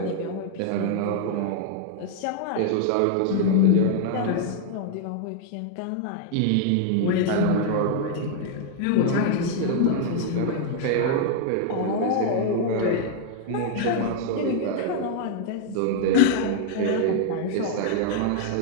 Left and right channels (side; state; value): both; different; correlation 0.00